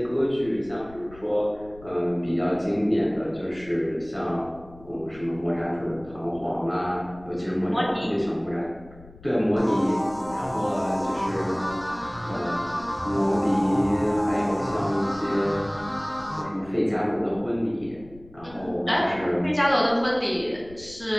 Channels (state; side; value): noise; left; rumble, 21 dB below the sound